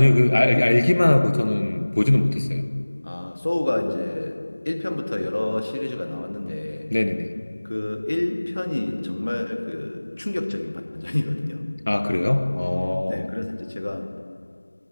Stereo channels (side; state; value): both; inverted; correlation -1.00